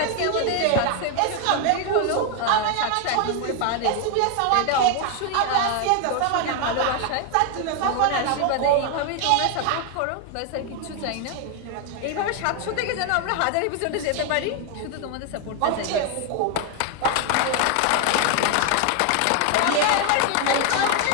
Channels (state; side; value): different; both; correlation 0.01